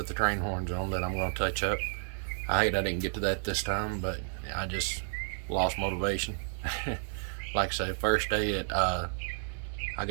the train horns on that I'm going to touch up. I hate I didn't get to that this time, but I just lost motivation. Like I say, first day I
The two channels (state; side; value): silent; left; digital silence